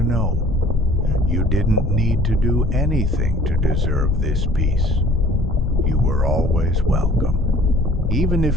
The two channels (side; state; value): both; normal; correlation 0.52